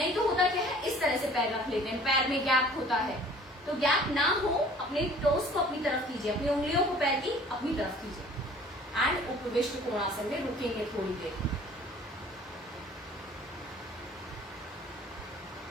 तो होता क्या है, इस तरह से पैर रख लेते हैं, पैर में गैप होता है। तो गैप ना हो, अपने टोज को अपनी तरफ कीजिए, अपनी उंगलियों को पैर की अपनी तरफ कीजिए। एंड उपविष्ट कोणासन में रुकेंगे थोड़ी देर।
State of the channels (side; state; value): both; normal; correlation 0.51